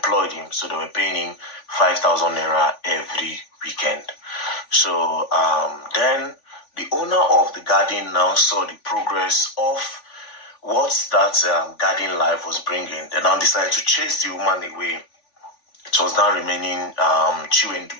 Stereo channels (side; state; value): right; late; 3.5 ms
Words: him. So they were paying him 5,000 naira every weekend. So then the owner of the garden now saw the progress of what that garden life was bringing. They now decided to chase the woman away. It was now remaining Chiwendu.